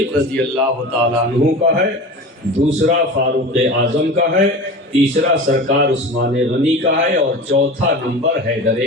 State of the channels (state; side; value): normal; both; correlation 0.33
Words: رضی اللہ تعالیٰ عنہ کا ہے، دوسرا فاروق اعظم کا ہے، تیسرا سرکار عثمان غنی کا ہے اور چوتھا نمبر حیدر